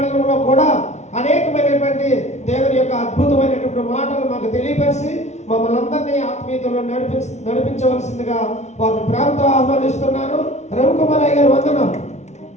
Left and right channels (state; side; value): late; right; 0.32 ms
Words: కూడా అనేకమైనటువంటి దేవుని యొక్క అద్భుతమైనటువంటి మాటలు మాకు తెలియపరిచి మమ్మల్ని అందరినీ ఆత్మీయతలో నడిపించవలసిందిగా వారిని ప్రేమతో ఆహ్వానిస్తున్నాను. రవికుమార్ అయ్య గారు వందనం.